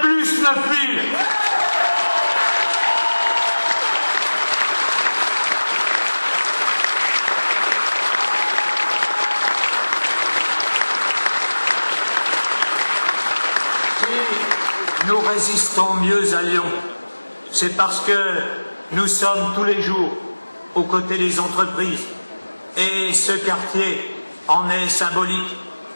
plus 9 000. Nous résistons mieux à Lyon, c'est parce que nous sommes tous les jours aux côtés des entreprises et ce quartier en est symbolique.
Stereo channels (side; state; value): both; inverted; correlation -1.00